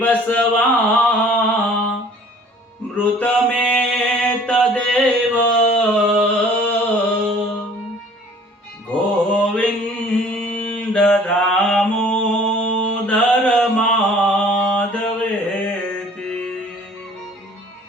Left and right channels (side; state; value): both; normal; correlation 0.52